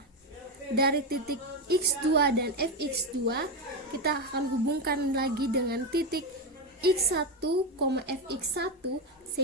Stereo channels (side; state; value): both; normal; correlation 0.11